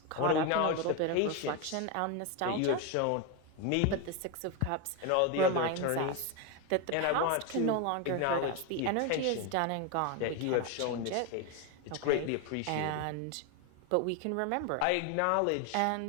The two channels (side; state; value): both; different; correlation 0.02